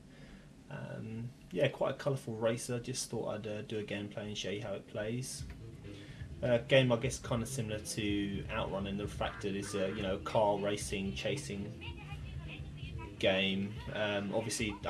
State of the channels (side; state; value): both; identical; correlation 1.00